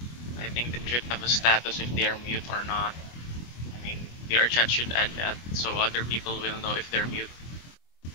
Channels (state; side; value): late; right; 24 ms